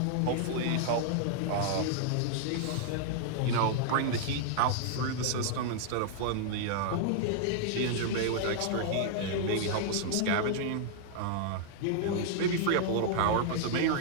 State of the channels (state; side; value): different; both; correlation -0.01